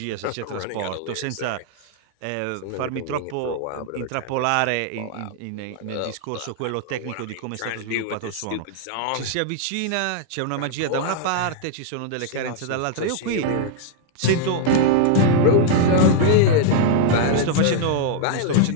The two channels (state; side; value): different; both; correlation -0.01